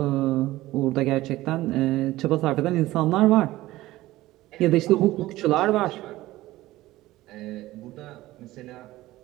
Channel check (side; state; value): left; quieter; 17.0 dB